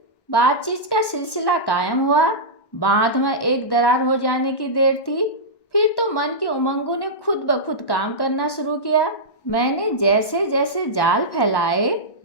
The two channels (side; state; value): right; late; 1.1 ms